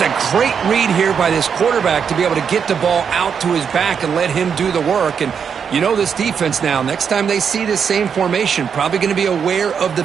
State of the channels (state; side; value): quieter; left; 7.0 dB